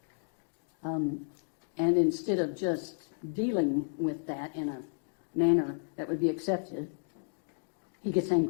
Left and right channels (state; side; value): silent; right; digital silence